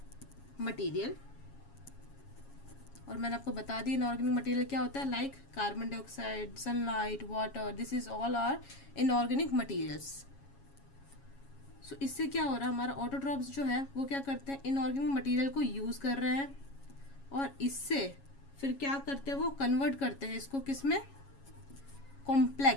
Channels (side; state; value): right; late; 7.3 ms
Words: मटेरियल। और मैंने आपको बता दिया इनऑर्गेनिक मटेरियल क्या होता है, like carbon dioxide, sunlight, water, this is all are inorganic materials. So इससे क्या हो रहा है, हमारा ऑटोट्रॉप्स जो है वो क्या करते हैं, इनऑर्गेनिक मटेरियल को यूज़ कर रहे हैं और इससे फिर क्या करते हैं, वो कन्वर्ट करते हैं इसको किस में,